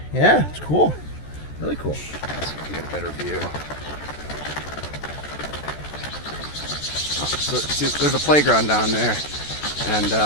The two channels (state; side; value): late; right; 14 ms